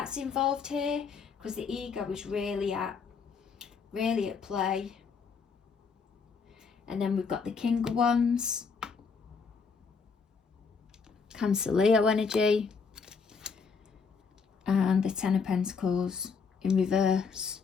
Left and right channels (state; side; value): quieter; right; 5.3 dB